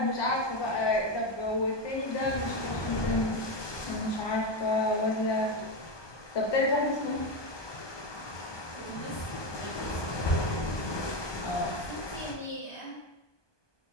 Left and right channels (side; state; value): right; late; 1.2 ms